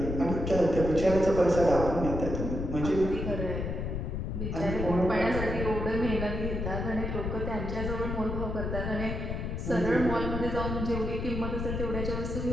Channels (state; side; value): noise; left; rumble, 3 dB below the sound